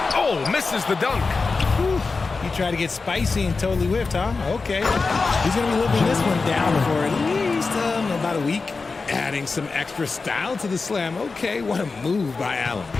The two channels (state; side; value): quieter; right; 4.2 dB